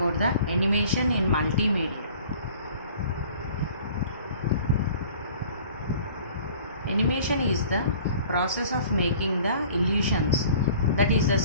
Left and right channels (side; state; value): both; inverted; correlation -0.49